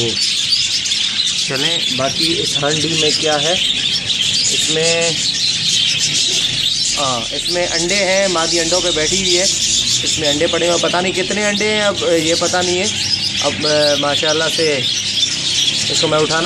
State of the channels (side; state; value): both; identical; correlation 1.00